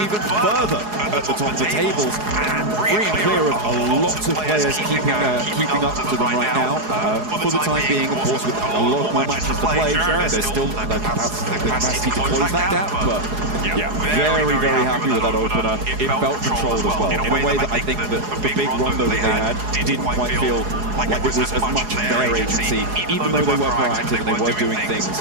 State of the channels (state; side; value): late; left; 4.8 ms